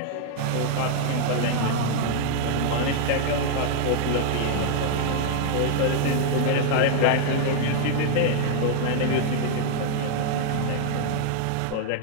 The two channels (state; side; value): different; both; correlation 0.00